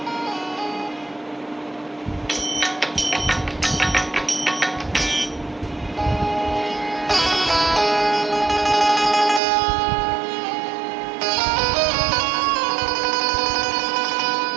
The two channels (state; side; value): drops out; left; at 9.4 s